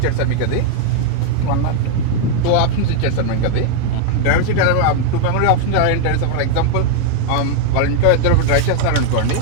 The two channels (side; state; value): both; different; correlation 0.00